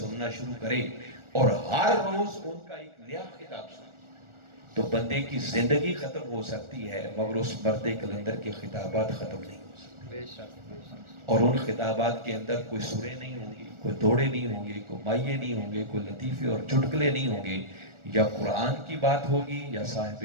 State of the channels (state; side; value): late; left; 1.4 ms